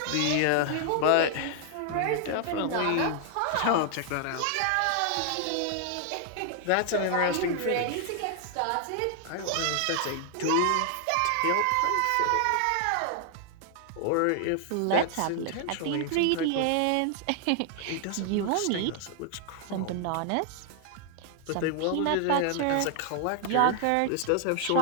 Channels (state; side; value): different; both; correlation 0.00